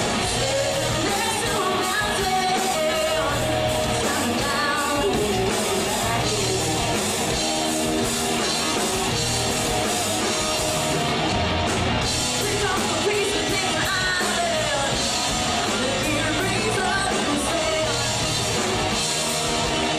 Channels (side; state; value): both; identical; correlation 1.00